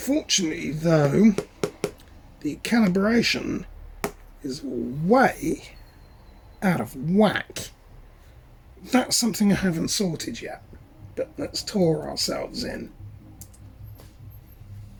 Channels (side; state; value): both; identical; correlation 1.00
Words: though, the calibration is way out of whack. That's something I haven't sorted yet, but let's tour ourselves in.